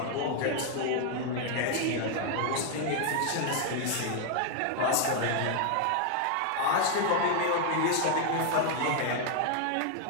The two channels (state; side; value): different; both; correlation 0.00